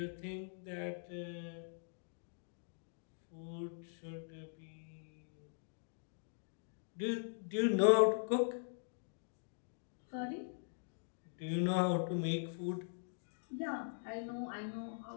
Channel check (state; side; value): silent; right; digital silence